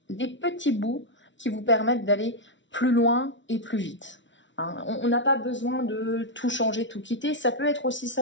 des petits bouts qui vous permettent d'aller plus loin et plus vite. Hein, on n'a pas besoin de tout changer, tout quitter. Ça peut être aussi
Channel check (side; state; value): right; late; 0.55 ms